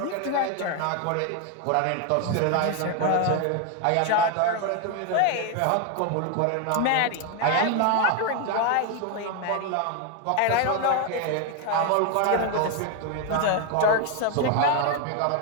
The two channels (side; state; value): both; different; correlation 0.01